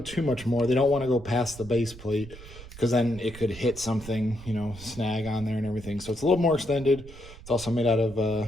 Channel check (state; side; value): noise; right; rumble, 16 dB below the sound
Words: much more. They don't want to go past the base plate because then it could hit something, you know, snag on there and everything. So it's a little more extended. It's also made out